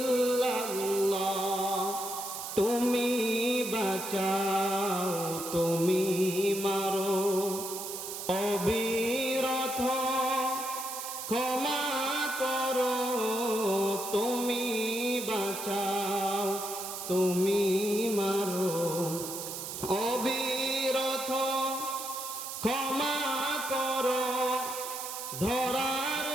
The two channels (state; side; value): noise; right; hiss, 7 dB below the sound